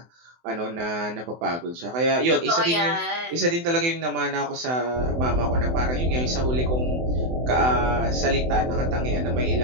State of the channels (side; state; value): left; late; 24 ms